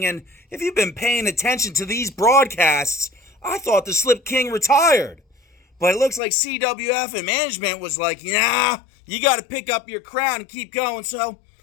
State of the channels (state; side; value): drops out; right; at 6.2 s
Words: and if you've been paying attention to these broadcasts, I thought the Slip King retired. But it looks like CWF and management was like, nah, you got to pick up your crown and keep going. So